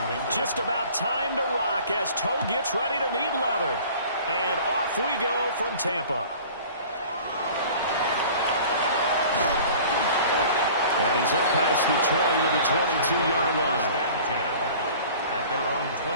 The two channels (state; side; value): inverted; both; correlation -0.45